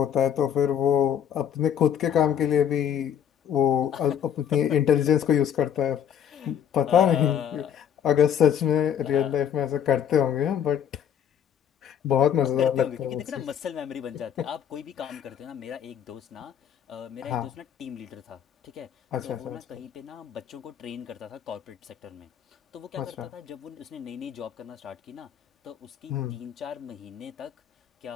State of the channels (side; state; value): right; quieter; 9.0 dB